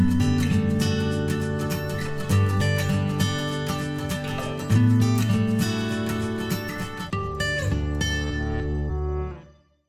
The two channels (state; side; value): identical; both; correlation 1.00